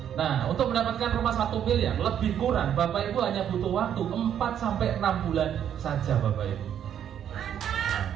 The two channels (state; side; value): quieter; left; 9.5 dB